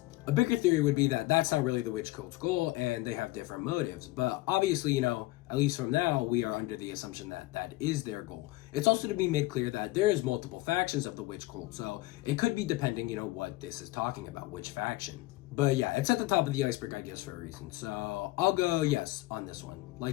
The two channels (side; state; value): right; quieter; 19.2 dB